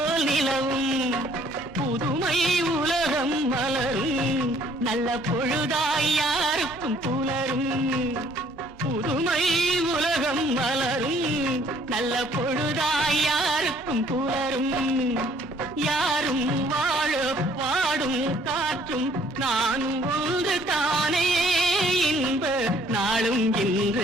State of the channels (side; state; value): both; normal; correlation 0.61